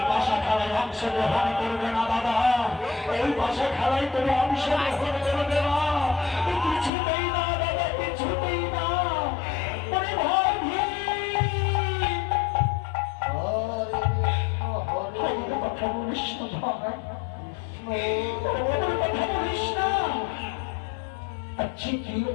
ভাষা খেলায় অংশগ্রহণ করবে না দাদা, এই ভাষা খেলায় তুমি অংশগ্রহণ করবে না, কিছুতেই না দাদা, কিছুতেই না। ওরে ভাই কথা বলিস না ভাই, কথা বলিস না। আচ্ছা কি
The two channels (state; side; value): drops out; right; at 6.9 s